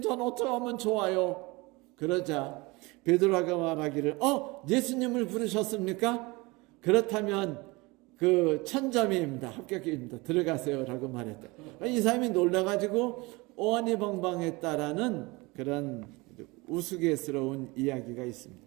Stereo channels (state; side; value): quieter; left; 24.3 dB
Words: 전 어떻게 하면 좋아요? 그러자 베드로가 말하기를 예수님을 부르셨습니까? 그렇다면 1000점입니다. 합격입니다. 들어가세요 라고 말했다. 이 사람이 놀라가지고 오한이벙벙했다라는 그런 우스갯스러운 이야기가 있습니다.